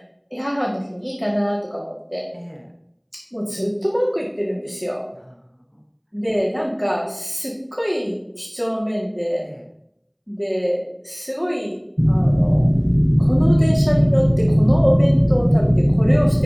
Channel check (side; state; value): both; identical; correlation 1.00